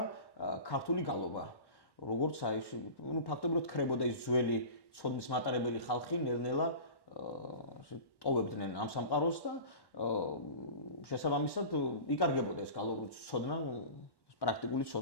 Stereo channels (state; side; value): late; right; 1.1 ms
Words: ქართული გალობა. როგორც აი, ფაქტობრივად ქრებოდა ის ძველი ცოდნის მატარებელი ხალხი ნელ-ნელა ტოვებდნენ ამ სამყაროს და შესაბამისად იკარგებოდა ეს გალობის ცოდნა, პრაქტიკული